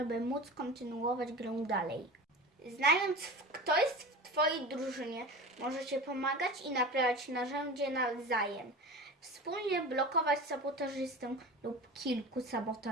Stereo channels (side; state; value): both; normal; correlation 0.33